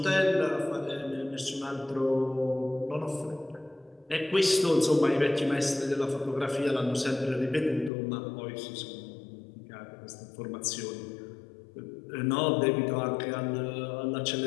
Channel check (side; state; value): right; drops out; at 7.9 s